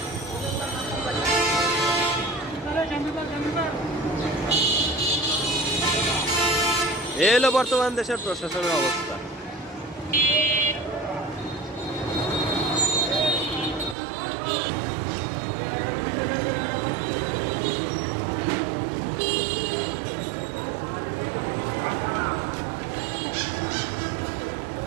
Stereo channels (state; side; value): drops out; left; at 14.0 s